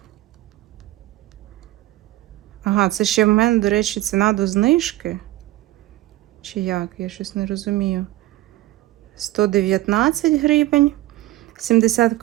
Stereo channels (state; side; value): quieter; left; 16.6 dB